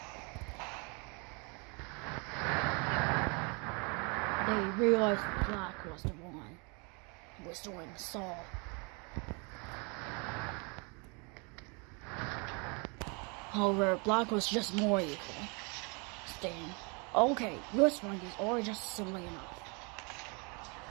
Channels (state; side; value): quieter; left; 32.4 dB